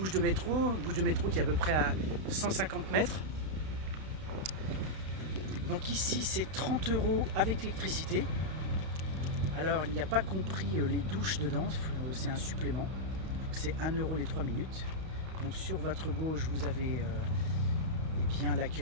de métro. Une bouche de métro qui est à peu près à 150 mètres. Donc ici c'est 30 € avec l'électricité. Alors il n'y a pas compris les douches dedans, c'est un supplément. C'est 1 € les 3 minutes. Donc sur votre gauche vous avez eh bien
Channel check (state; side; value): late; left; 31 ms